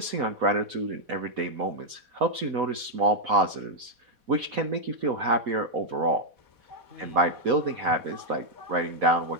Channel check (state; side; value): late; left; 4.1 ms